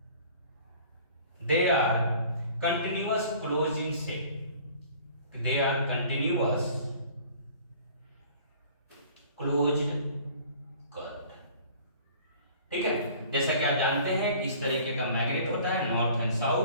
they are continuous close in shape, they are continuous closed curved. ठीक है, जैसा कि आप जानते हैं कि इस तरीके का मैग्नेट होता है नॉर्थ एंड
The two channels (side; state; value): both; inverted; correlation -0.49